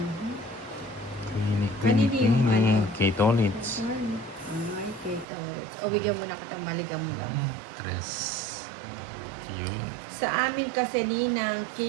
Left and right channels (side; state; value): left; drops out; at 5.2 s